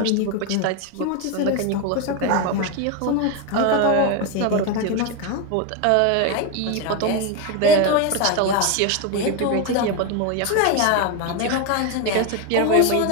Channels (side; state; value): both; different; correlation 0.02